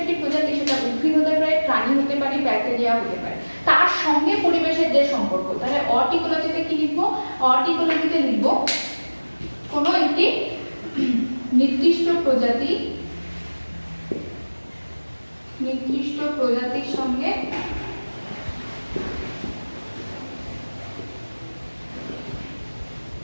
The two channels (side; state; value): both; inverted; correlation -1.00